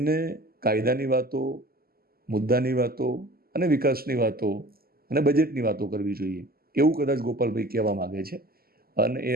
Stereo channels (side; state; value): left; late; 0.44 ms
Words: કાયદાની વાતો, મુદ્દાની વાતો અને વિકાસની વાતો અને બજેટની વાતો કરવી જોઈએ, એવું કદાચ ગોપાલભાઈ કહેવા માગે છે અને